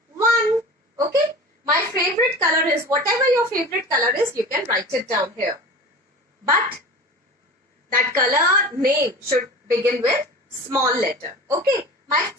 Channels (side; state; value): both; normal; correlation 0.35